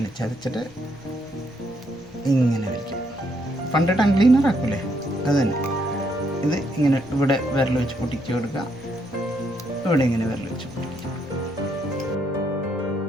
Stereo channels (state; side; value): normal; both; correlation 0.74